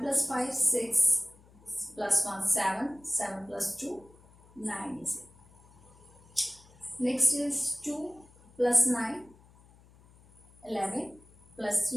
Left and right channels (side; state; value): left; noise; hum, 26 dB below the sound